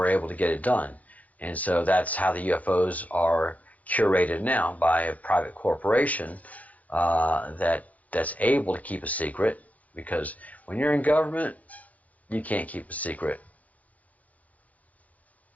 able to get it done. And so that's how the UFOs are curated now, by a private corporation that's able to keep a secret, because when you're in government, you can't keep a secret.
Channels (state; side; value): late; right; 0.074 ms